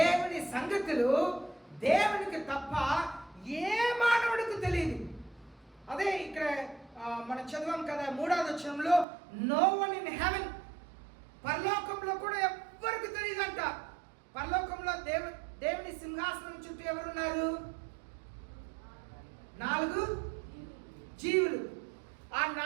సంగతులు దేవునికి తప్ప ఏ మానవుడికి తెలియదు. అదే ఇక్కడ మనం చదివాం కదా 3వ వచనంలో, నో వన్ ఇన్ హెవెన్, పరలోకంలో కూడా ఎవ్వరికి తెలియదంట. పరలోకంలో దేవుని సింహాసనం చుట్టూ ఎవరున్నారు? 4 జీవులు. ఆ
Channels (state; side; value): drops out; left; at 9.1 s